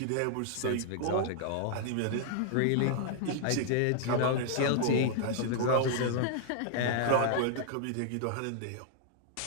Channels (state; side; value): different; both; correlation -0.01